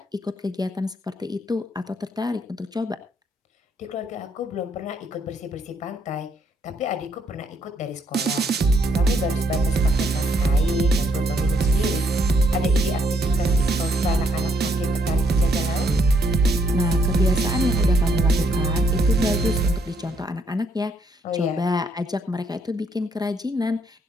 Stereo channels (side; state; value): both; normal; correlation 0.71